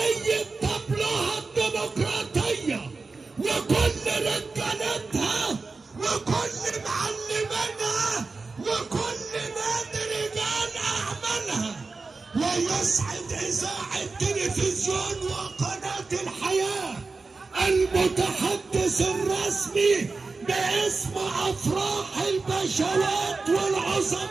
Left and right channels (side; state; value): left; quieter; 4.0 dB